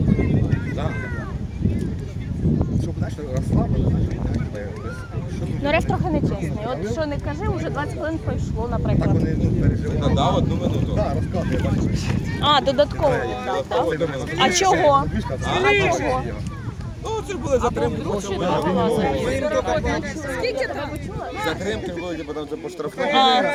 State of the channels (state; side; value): identical; both; correlation 1.00